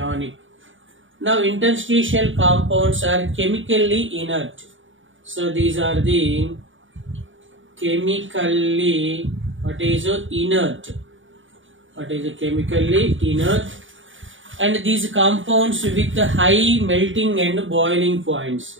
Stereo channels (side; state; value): left; late; 0.57 ms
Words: Now interstitial compounds are chemically inert. So these are the chemically, what is it? Inert. What is chemically inert, and these compounds with high melting and boiling points.